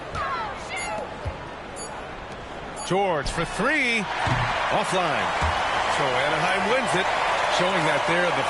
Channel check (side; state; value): both; identical; correlation 1.00